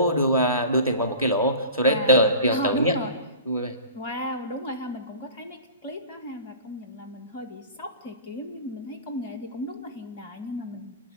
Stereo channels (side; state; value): both; inverted; correlation -0.39